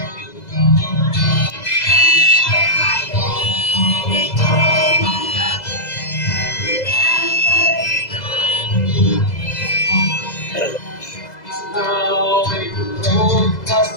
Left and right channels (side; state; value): right; late; 2.0 ms